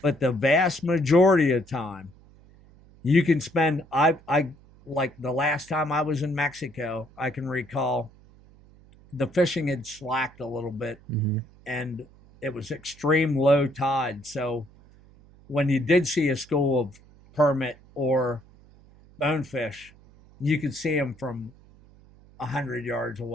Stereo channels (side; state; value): right; noise; hum, 25 dB below the sound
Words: But the vast majority of the time, you can spend, I like the last time I was in Mexico, I can recall the fishing had slacked a little bit and it was extreme low tide. So when you did see a school of permit or bonefish, you could see them from 100 yards